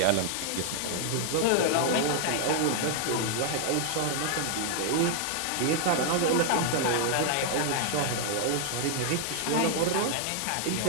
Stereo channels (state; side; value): different; both; correlation 0.00